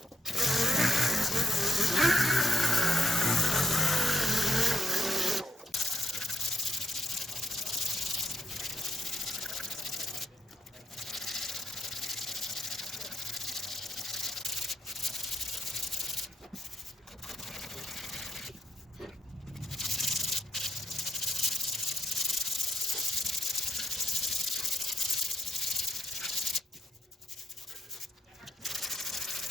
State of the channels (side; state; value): both; normal; correlation 0.76